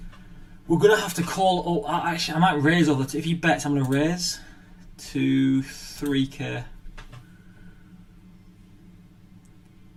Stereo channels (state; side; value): identical; both; correlation 1.00